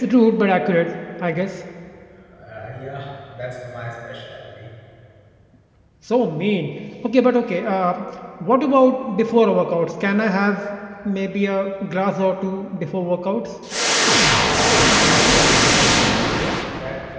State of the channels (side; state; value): both; identical; correlation 1.00